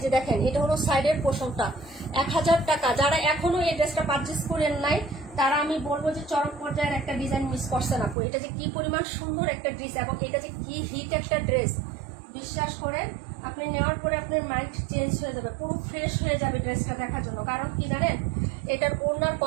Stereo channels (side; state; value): left; drops out; at 8.2 s